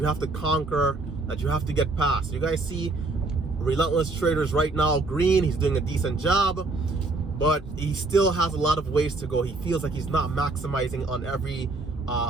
have to conquer, that you have to get past? You guys see Relentless Traders right now, green. He's doing a decent job, but he still has a lot of ways to go. He feels like he's not maximizing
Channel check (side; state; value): left; quieter; 3.3 dB